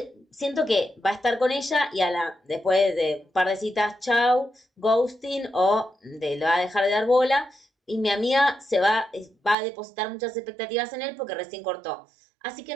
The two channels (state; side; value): drops out; left; at 9.6 s